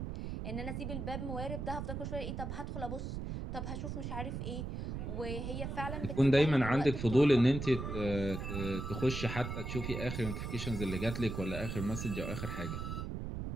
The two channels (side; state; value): right; noise; rumble, 5 dB below the sound